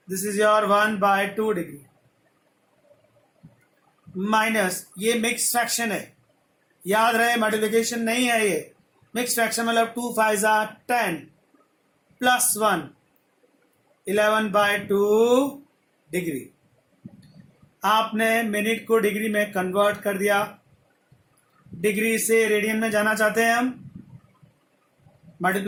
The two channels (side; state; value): both; identical; correlation 1.00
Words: this is your 1/2 degree, minus, ये मिक्स फ्रैक्शन है, याद रहे मल्टीप्लिकेशन नहीं है ये। मिक्स फ्रैक्शन मतलब 2 5 10 प्लस 1, 11/2 डिग्री। आपने मिनट को डिग्री में कन्वर्ट कर दिया, डिग्री से रेडियन में जाना चाहते हैं हम,